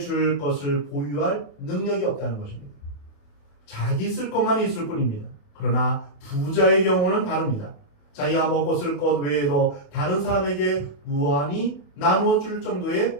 것을 보유할 능력이 없다는 것입니다. 자기 쓸 것만 있을 뿐입니다. 그러나 부자의 경우는 다릅니다. 자기가 먹고 쓸 것 외에도 다른 사람에게 무한히 나누어 줄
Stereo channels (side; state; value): right; late; 28 ms